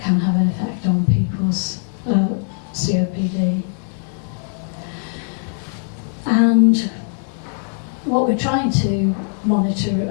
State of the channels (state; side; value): silent; right; 60 dB below the other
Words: have an effect on people's COPD. And what we're trying to monitor,